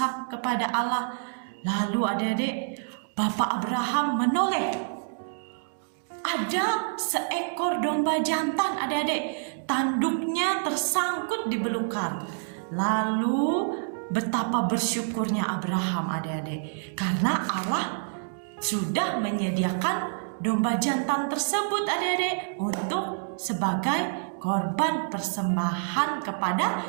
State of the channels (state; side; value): silent; left; digital silence